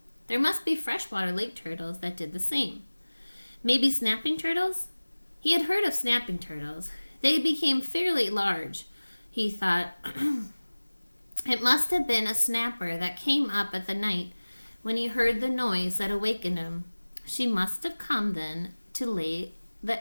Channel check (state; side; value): inverted; both; correlation -1.00